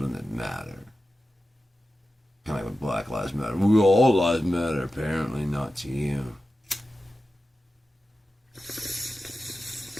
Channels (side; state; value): both; normal; correlation 0.93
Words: that matter. Kind of like with Black Lives Matter. We all lives matter. Apparently not to you.